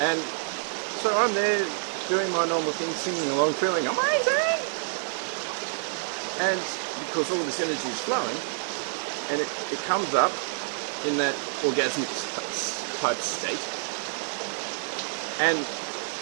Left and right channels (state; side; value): silent; left; 60 dB below the other